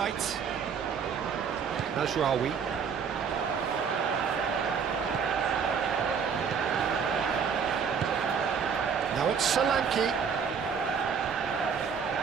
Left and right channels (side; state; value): left; quieter; 6.5 dB